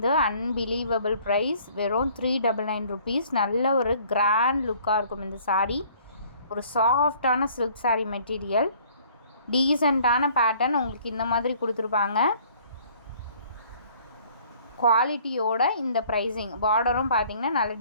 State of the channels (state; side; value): inverted; both; correlation -0.56